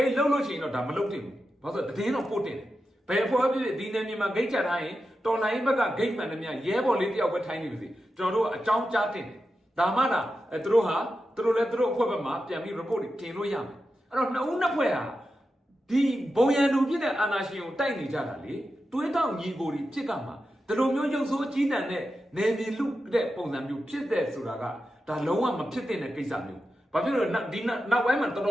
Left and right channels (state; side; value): normal; both; correlation 0.90